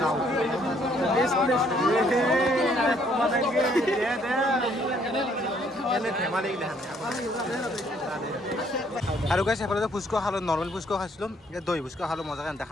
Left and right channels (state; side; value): normal; both; correlation 0.66